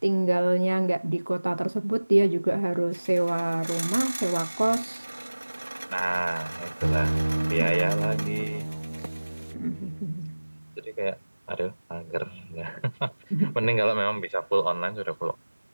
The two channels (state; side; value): inverted; both; correlation -1.00